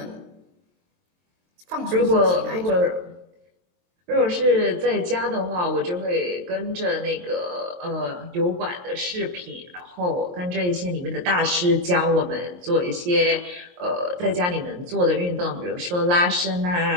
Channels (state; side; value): late; left; 23 ms